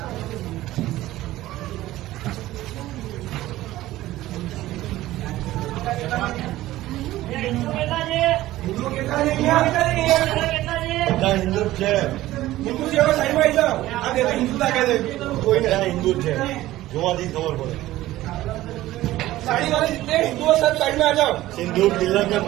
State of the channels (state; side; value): quieter; left; 15.9 dB